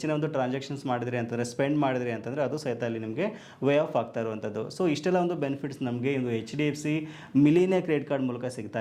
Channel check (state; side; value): identical; both; correlation 1.00